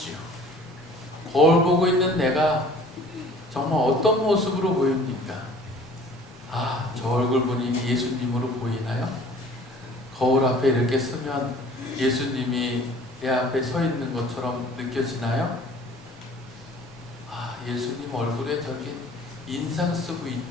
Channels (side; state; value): both; normal; correlation 0.50